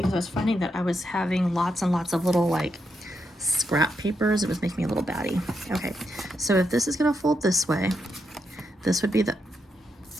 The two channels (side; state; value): both; normal; correlation 0.82